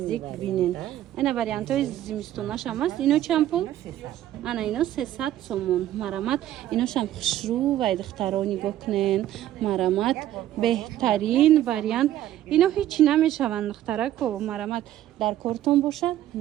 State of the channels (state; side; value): quieter; left; 12.9 dB